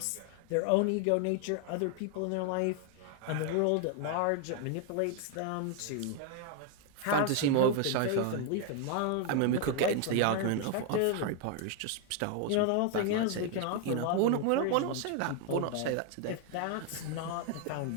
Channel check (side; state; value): both; different; correlation 0.01